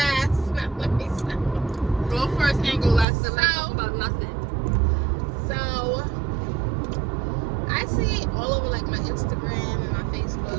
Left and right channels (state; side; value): drops out; left; at 3.1 s